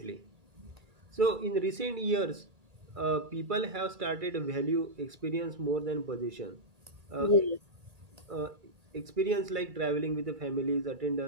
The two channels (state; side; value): late; left; 2.3 ms